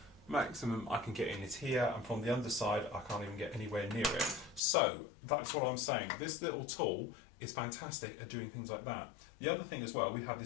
maximum I can get in is here, and from the underside I can't even get anywhere near it. So that's what I'm saying. This little tool is fantastic at doing things like that. The other thing as well, we have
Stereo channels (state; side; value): drops out; right; at 4.6 s